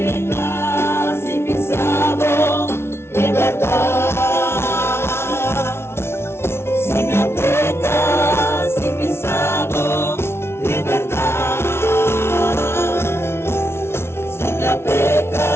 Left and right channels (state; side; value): late; right; 0.12 ms